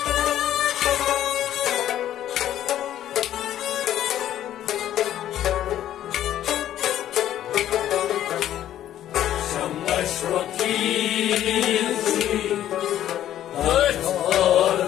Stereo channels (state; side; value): quieter; right; 11.9 dB